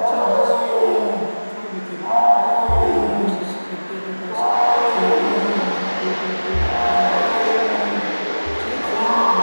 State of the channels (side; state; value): both; inverted; correlation -1.00